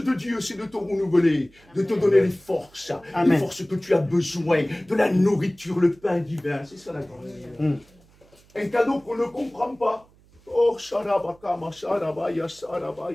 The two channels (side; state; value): right; noise; hum, 29 dB below the sound